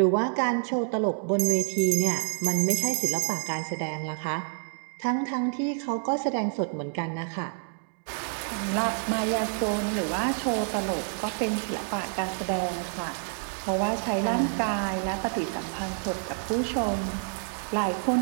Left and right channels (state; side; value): silent; left; 59 dB below the other